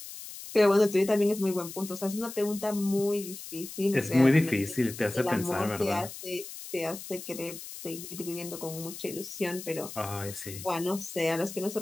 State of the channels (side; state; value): left; noise; hiss, 12 dB below the sound